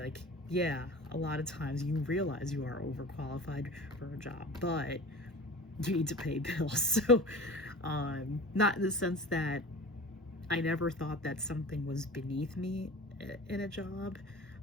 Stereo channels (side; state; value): both; normal; correlation 0.37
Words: like, yeah, a lot of times you realize you are overqualified for a job, but you need to pay bills. So not in the sense that I never thought that something was beneath me in a job.